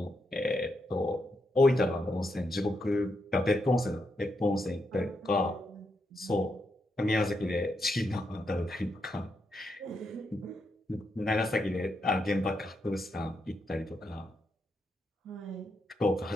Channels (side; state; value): both; normal; correlation 0.82